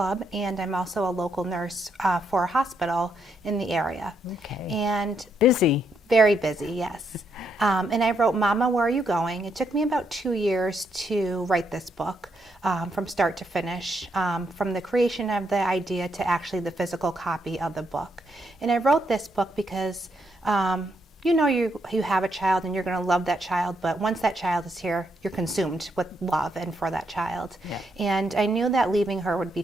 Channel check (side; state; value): both; normal; correlation 0.77